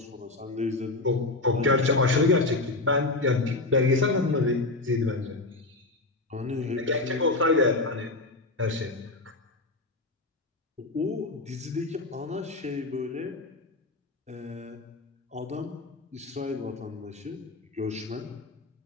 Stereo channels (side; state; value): right; quieter; 3.1 dB